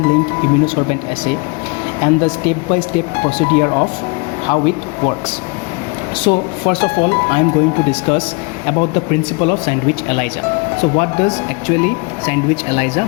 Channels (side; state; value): right; quieter; 30.0 dB